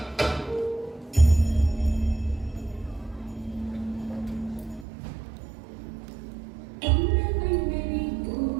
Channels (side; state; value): left; drops out; at 4.9 s